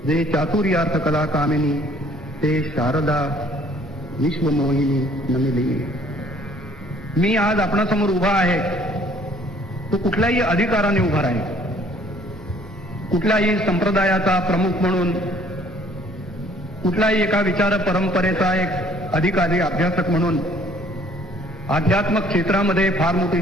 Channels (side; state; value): both; normal; correlation 0.59